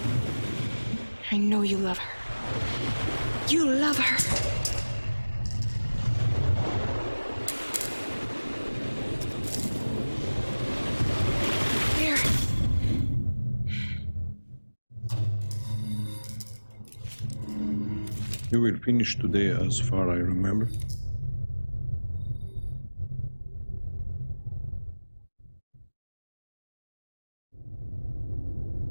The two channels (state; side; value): inverted; both; correlation -1.00